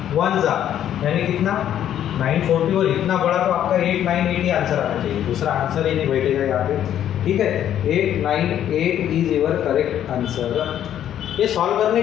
1 जा यानी कितना? 940, और इतना बड़ा तो आपका 898 आंसर आना चाहिए। दूसरा आंसर ही नहीं बैठेगा यहाँ पे, ठीक है? 898 इज योर करेक्ट आंसर। ये सॉल्व करने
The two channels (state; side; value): quieter; right; 10.7 dB